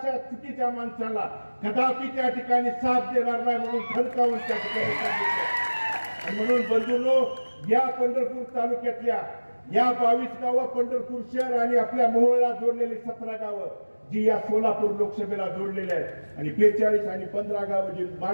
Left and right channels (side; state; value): both; inverted; correlation -1.00